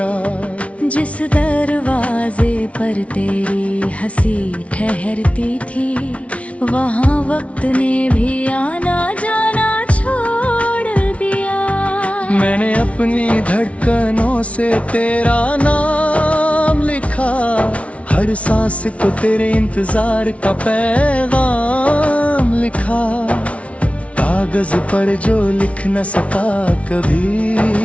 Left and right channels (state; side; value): late; right; 0.064 ms